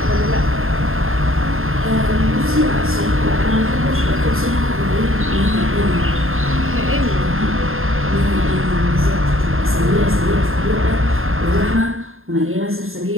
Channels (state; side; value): late; left; 0.61 ms